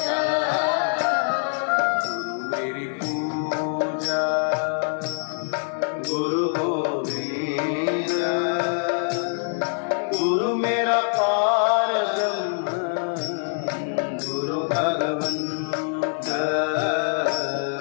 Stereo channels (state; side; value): silent; right; digital silence